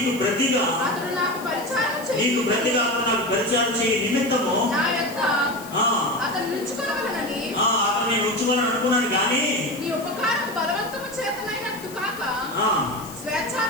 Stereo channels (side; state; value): left; noise; hiss, 17 dB below the sound